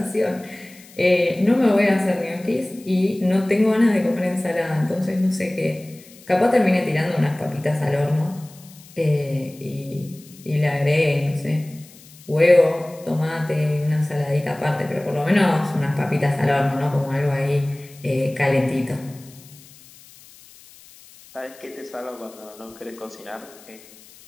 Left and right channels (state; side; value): noise; left; hiss, 23 dB below the sound